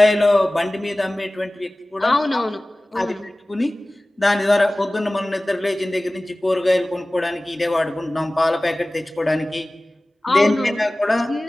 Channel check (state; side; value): normal; both; correlation 0.98